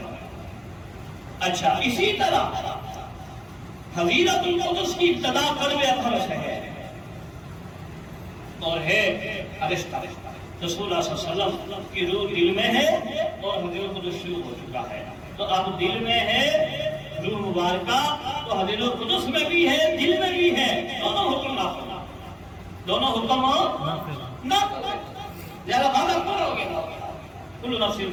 اچھا اسی طرح حضرت القدس کی ابتدا قلب اطہر سے ہے اور ہے عرش تک رسول اللہ صلی اللہ علیہ وسلم کی روح دل میں ہے اور حضرت القدس شروع ہو چکا ہے تو اب دل میں ہے روح مبارکہ تو حضرت القدس میں بھی ہے دل میں بھی ہے دونوں حکم نافذ دونوں حکم نافذ لہذا وعدہ پورا ہو گیا کل نفس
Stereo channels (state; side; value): identical; both; correlation 1.00